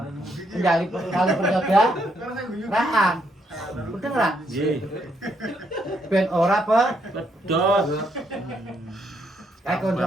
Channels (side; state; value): both; normal; correlation 0.74